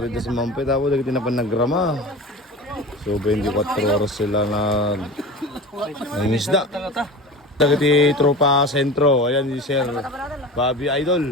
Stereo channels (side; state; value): both; normal; correlation 0.33